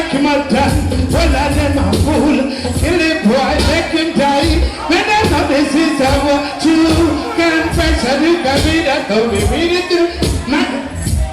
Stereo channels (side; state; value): both; identical; correlation 1.00